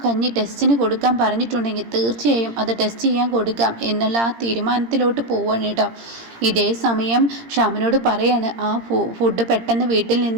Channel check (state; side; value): late; left; 17 ms